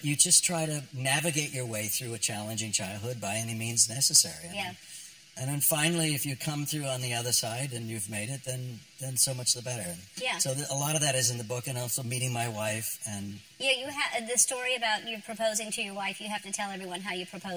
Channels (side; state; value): both; identical; correlation 1.00